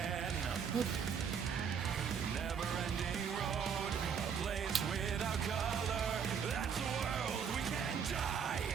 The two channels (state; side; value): quieter; left; 7.0 dB